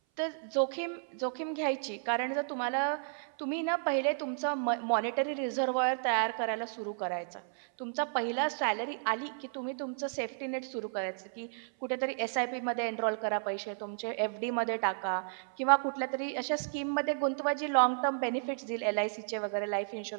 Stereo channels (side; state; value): left; silent; 56 dB below the other